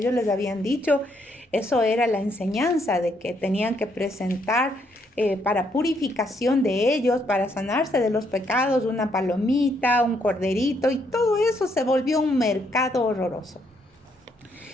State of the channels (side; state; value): both; normal; correlation 0.73